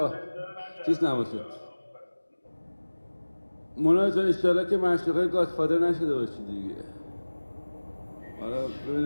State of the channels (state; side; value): inverted; both; correlation -1.00